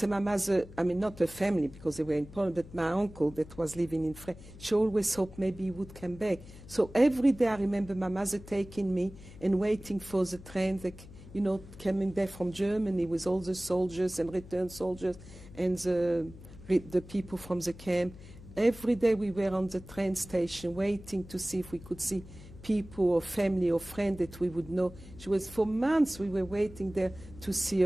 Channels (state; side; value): noise; left; hum, 17 dB below the sound